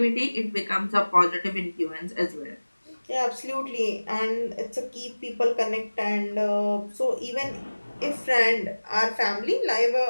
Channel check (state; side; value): inverted; both; correlation -1.00